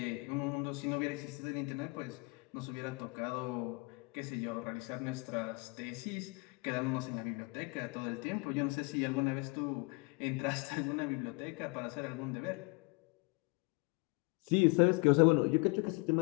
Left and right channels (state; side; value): quieter; right; 29.5 dB